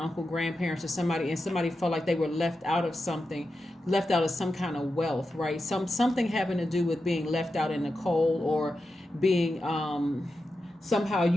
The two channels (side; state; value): both; normal; correlation 0.90